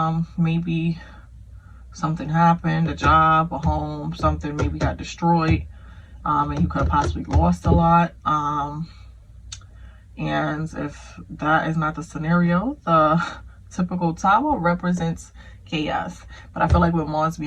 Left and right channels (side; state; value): both; identical; correlation 1.00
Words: maybe something happened, a job, a home, something maybe got destroyed, and you could have possibly lost a lot. And if that is not the scenario, the typical Tower represents chaos. But I feel like with Mars